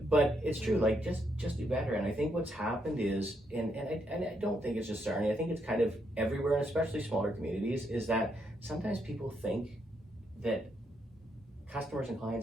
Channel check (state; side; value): normal; both; correlation 0.77